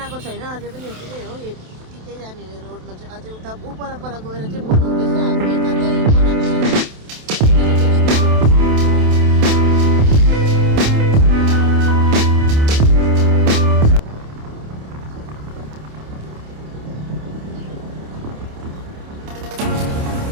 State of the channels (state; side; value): late; left; 27 ms